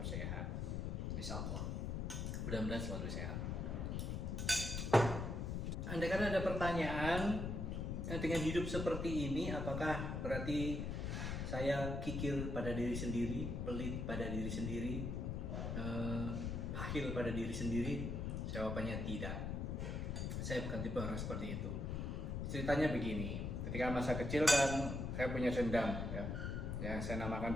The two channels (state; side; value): noise; left; rumble, 2 dB below the sound